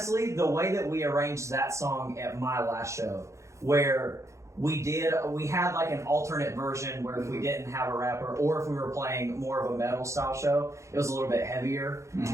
the way that we arranged that song at my last show, where we had like an alternate version where if we didn't have a rapper or if we were playing more of a metal style show, it was a little bit heavier in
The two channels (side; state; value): left; late; 0.14 ms